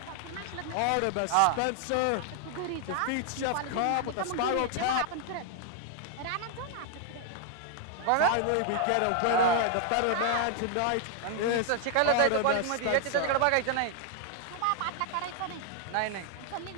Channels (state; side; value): different; both; correlation 0.00